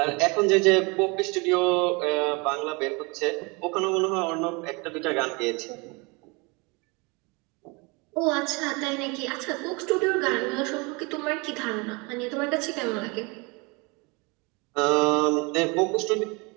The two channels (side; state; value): left; quieter; 28.6 dB